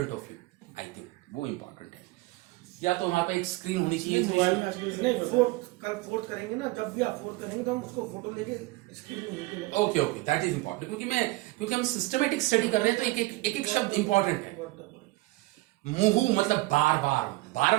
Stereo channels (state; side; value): quieter; left; 21.2 dB